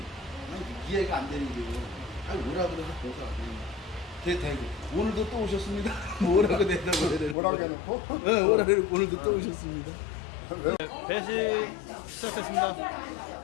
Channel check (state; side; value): drops out; right; at 7.4 s